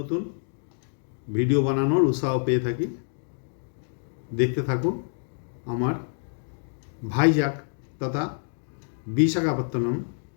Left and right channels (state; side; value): silent; right; digital silence